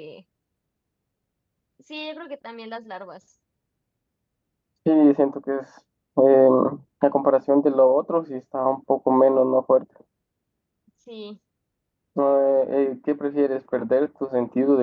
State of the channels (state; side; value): identical; both; correlation 1.00